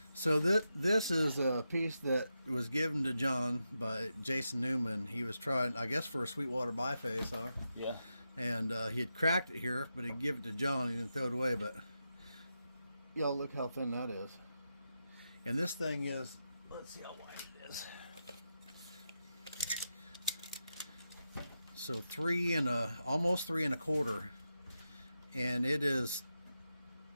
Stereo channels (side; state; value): both; inverted; correlation -0.88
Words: So this is a piece that was given to John by Jason Newman. He was trying, I guess, for a Sweetwater biface, huh? Yeah. And he had cracked it here, but he'd give it to John. He didn't throw it away, but y'all look how thin that is. And this thing is, let's see how wide it is. So almost 3 1/4, and it is